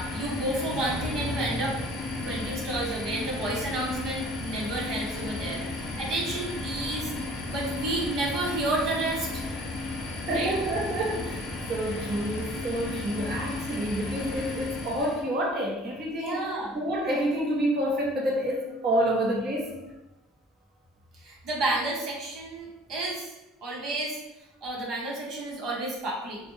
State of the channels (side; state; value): both; normal; correlation 0.51